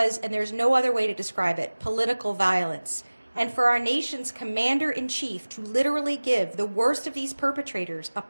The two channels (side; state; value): both; inverted; correlation -1.00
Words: and there's no other way to describe it, political violence. And for our nation's commander-in-chief to literally give the worst of these perpetrators a